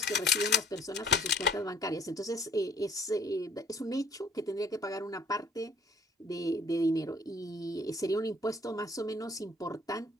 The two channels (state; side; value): normal; both; correlation 0.56